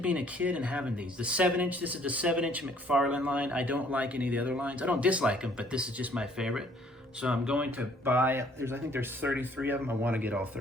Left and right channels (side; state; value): both; normal; correlation 0.60